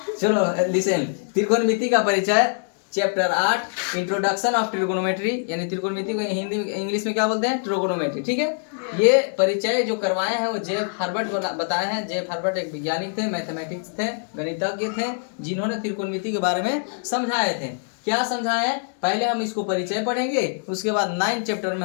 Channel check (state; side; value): silent; right; digital silence